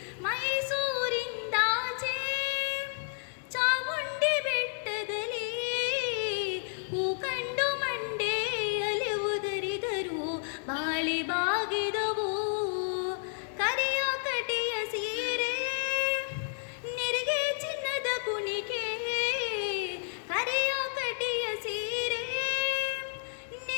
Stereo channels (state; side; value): silent; right; digital silence